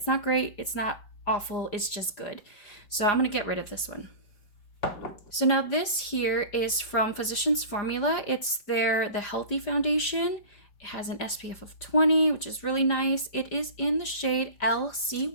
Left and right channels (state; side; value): late; right; 4.9 ms